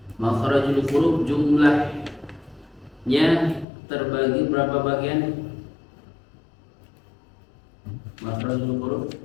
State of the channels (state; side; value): drops out; right; at 3.7 s